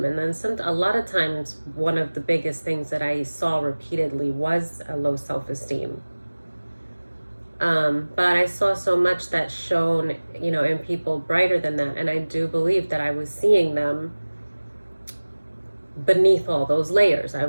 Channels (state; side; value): inverted; both; correlation -1.00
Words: And then a lot of times, one of the biggest things that I saw repeatedly was a low self-esteem. But I saw so much that shone, in people brighter than that. And I do believe that I was seeing them beneath all those layers. I